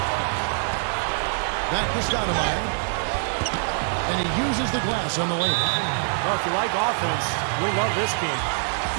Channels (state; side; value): silent; left; digital silence